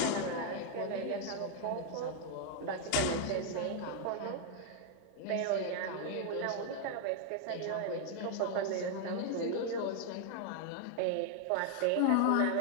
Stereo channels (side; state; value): both; different; correlation 0.00